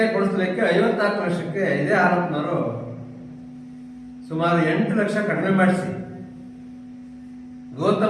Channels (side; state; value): both; identical; correlation 1.00